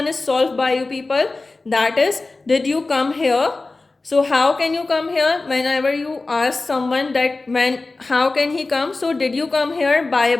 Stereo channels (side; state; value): right; quieter; 3.4 dB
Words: is solved by you people, that is, did you come here? So how can you come here? Whenever you ask someone that how can he come? So did you come here by